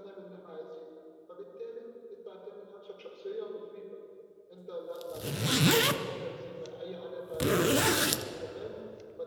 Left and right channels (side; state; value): both; identical; correlation 1.00